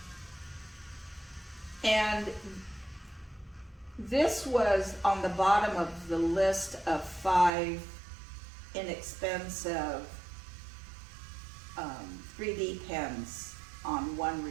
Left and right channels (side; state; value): left; drops out; at 7.5 s